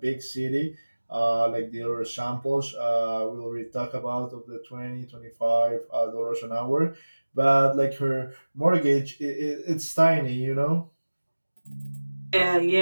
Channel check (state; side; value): inverted; both; correlation -1.00